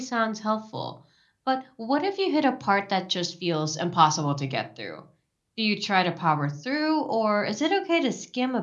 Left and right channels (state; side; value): identical; both; correlation 1.00